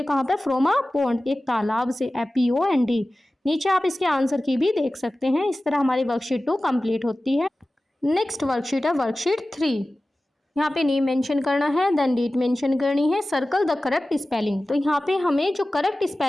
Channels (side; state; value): both; normal; correlation 0.96